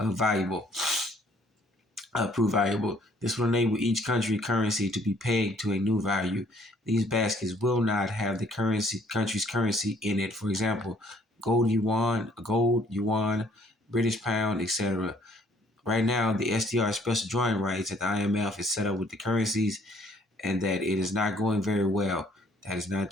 Prove valuable. This will enable each country currency to be pegged to a new value. These baskets will not have the country's currency in it. For example, gold yuan, British pound, etc. Right now, the SDR special drawing rights at the IMF is set up with the currencies, and that it is not going very well. That is not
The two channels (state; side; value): normal; both; correlation 0.61